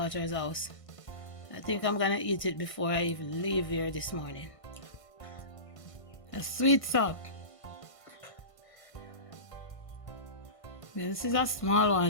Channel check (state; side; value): late; right; 1.5 ms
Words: house. I think I'm gonna eat it before I even leave here this morning. A sweet sock. Yeah, this is a small